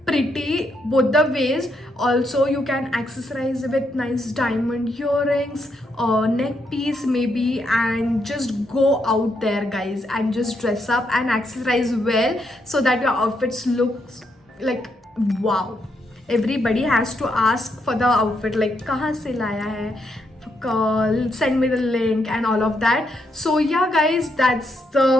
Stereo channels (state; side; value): normal; both; correlation 0.78